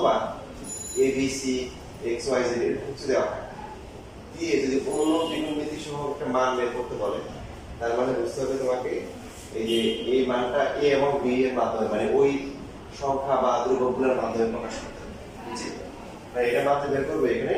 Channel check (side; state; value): both; identical; correlation 1.00